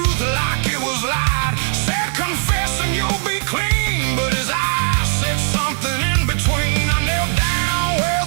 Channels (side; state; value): left; silent; 66 dB below the other